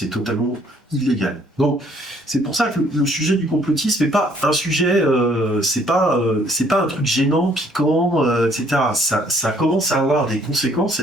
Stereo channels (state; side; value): normal; both; correlation 0.63